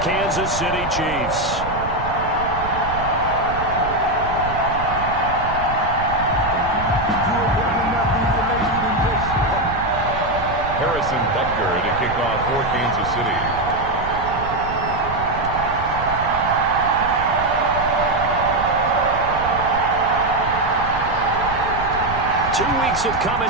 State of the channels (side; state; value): right; noise; rumble, 9 dB below the sound